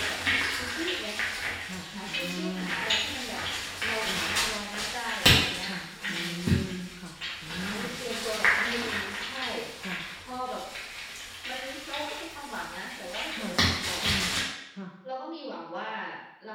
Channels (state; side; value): identical; both; correlation 1.00